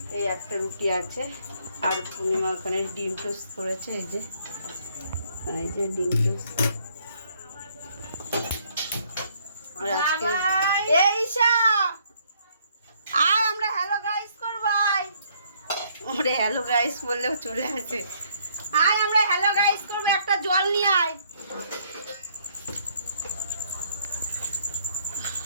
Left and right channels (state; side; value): inverted; both; correlation -0.66